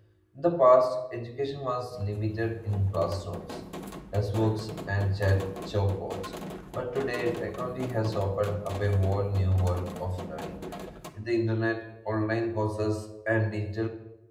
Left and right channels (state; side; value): identical; both; correlation 1.00